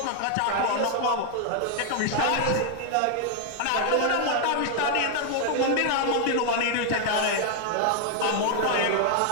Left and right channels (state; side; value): different; both; correlation 0.00